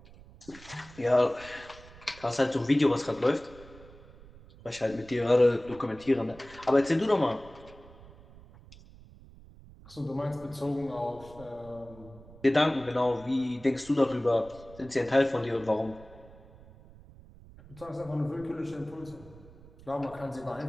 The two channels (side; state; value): right; noise; rumble, 21 dB below the sound